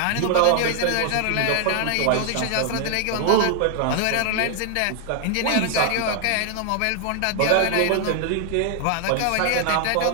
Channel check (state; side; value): different; both; correlation 0.00